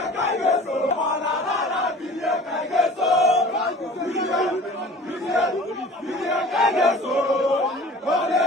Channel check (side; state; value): both; normal; correlation 0.43